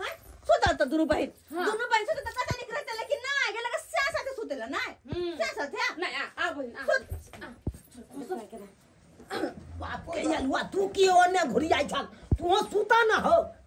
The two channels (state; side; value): identical; both; correlation 1.00